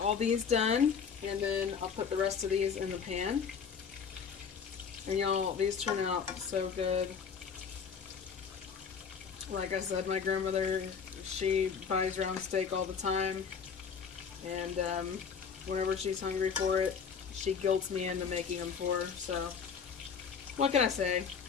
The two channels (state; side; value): quieter; right; 6.5 dB